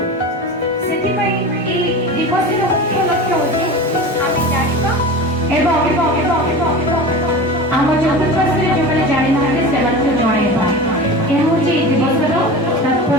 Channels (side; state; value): both; normal; correlation 0.31